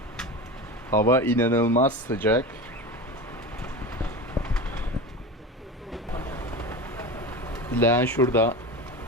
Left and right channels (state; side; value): normal; both; correlation 0.27